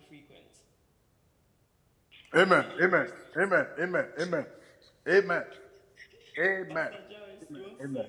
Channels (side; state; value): both; identical; correlation 1.00